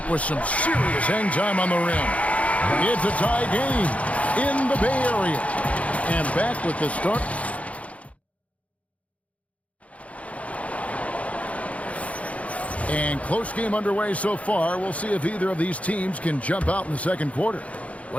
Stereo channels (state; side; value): late; right; 0.066 ms